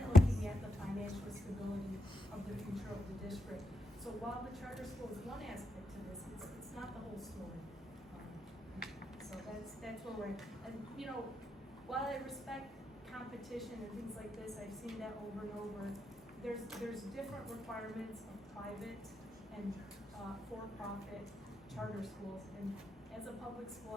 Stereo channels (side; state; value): both; normal; correlation 0.82